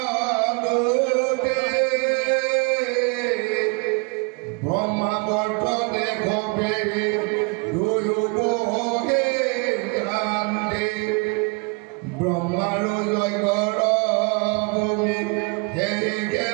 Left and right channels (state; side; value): quieter; left; 31.7 dB